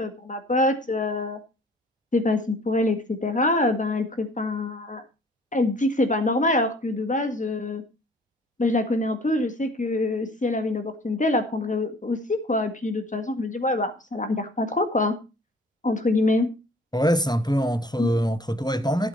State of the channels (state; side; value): normal; both; correlation 0.53